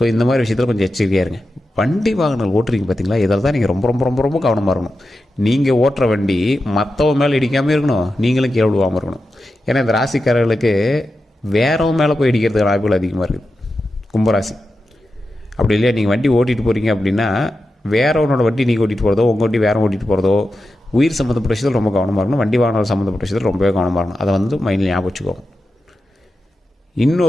இந்த மாதிரி விஷயத்தில் கொஞ்சம் எச்சரிக்கையாக இருங்க. வண்டி வாகனங்கள் ஓட்டுறீங்க பார்த்தீங்களா, இதில் தான் நீங்கள் ரொம்ப ரொம்ப ரொம்ப ரொம்ப கவனமாக இருக்கணும். நீங்கள் ஓட்டுற வண்டி மற்றவங்க மேலே இடிக்காமல் இருக்கணும், நீங்களும் கீழே விழுவாமல் இருக்கணும். ஏன்னா இந்த ராசிக்காரர்களுக்கு வேறவங்க மேலே போய் இடிக்கிறதுக்கு வாய்ப்புகள் அதிகமாக இருக்குது. கும்பராசி அப்படி இல்லையா? நீங்கள் வண்டி ஓட்டிகிட்டு போகிறீங்க அப்படின்னா வேறவனோட வண்டி நீங்கள் ஓட்டிகிட்டு போகிறதோ உங்கள் வண்டி வேற ஓட்டிகிட்டு போகிறதோ உயிர் சம்மந்தப்பட்ட விஷயத்தில் ரொம்ப கவனமாக இருக்கணும். வண்டி வாகனம் சம்மந்தப்பட்ட விஷயத்தில் ரொம்பவே கவனமாக இருக்கணும். அதை வந்து மைண்டில் ஞாபகம் வச்சுக்கோங்க.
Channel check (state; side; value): normal; both; correlation 0.90